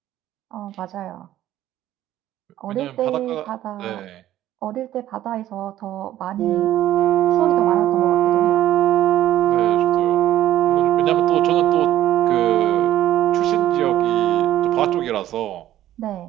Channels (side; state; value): left; quieter; 13.2 dB